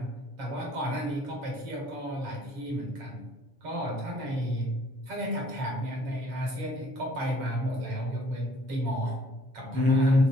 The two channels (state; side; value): late; left; 7.2 ms